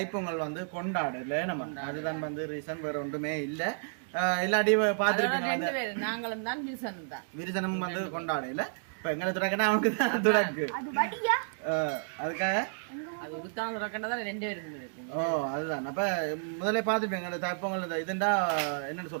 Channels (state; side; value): silent; left; digital silence